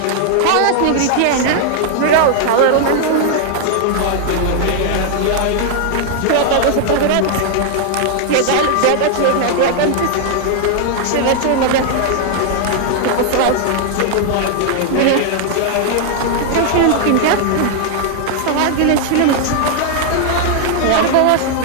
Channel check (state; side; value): different; both; correlation 0.00